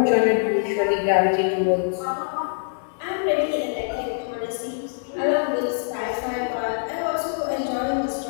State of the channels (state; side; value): silent; right; digital silence